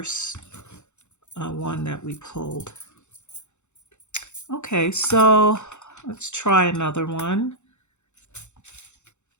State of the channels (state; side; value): late; right; 0.83 ms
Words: one that we pulled. Okay, so let's try another one.